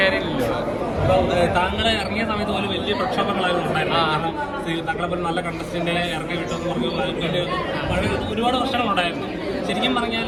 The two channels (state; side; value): identical; both; correlation 1.00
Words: താങ്കളെ ഇറങ്ങിയ സമയത്ത് പോലും വലിയ പ്രക്ഷോഭങ്ങളായിരുന്നു ഉണ്ടായിരുന്നു. കാരണം താങ്കളെ പോലെ നല്ല കണ്ടസ്റ്റന്റ് ഇറങ്ങി വിട്ടെന്ന് പറഞ്ഞ് ഒരുപാട് പ്രശ്നങ്ങളുണ്ടായിരുന്നു. ശരിക്കും പറഞ്ഞാൽ